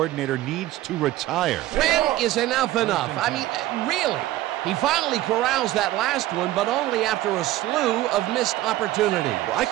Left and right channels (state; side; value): quieter; left; 15.5 dB